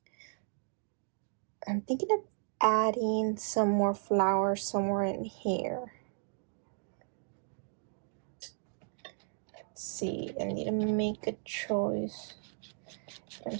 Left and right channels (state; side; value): silent; left; 55 dB below the other